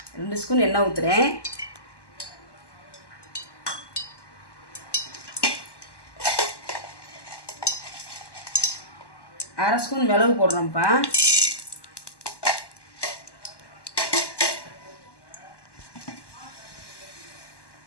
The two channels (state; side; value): late; right; 1.1 ms